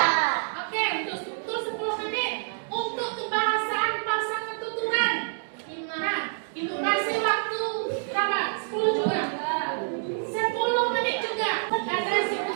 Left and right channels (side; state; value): left; silent; digital silence